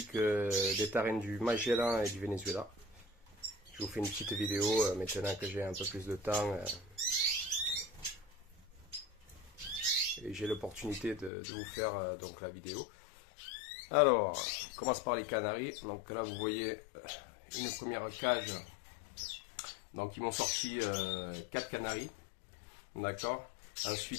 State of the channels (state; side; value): drops out; right; at 11.3 s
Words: que des tarennes du Magellan et du Venezuela. Je vous fais une petite vidéo maintenant que j'ai un peu plus de temps et j'ai l'opportunité de vous faire donc la vidéo. Alors, on commence par les Canaries. Donc là vous voyez une première cage. Donc ils m'ont sorti 4 Canaries. D'accord.